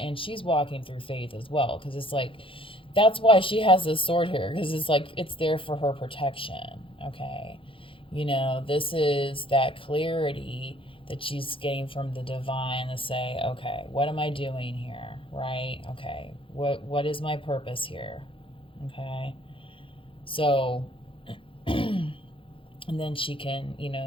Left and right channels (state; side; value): late; right; 0.25 ms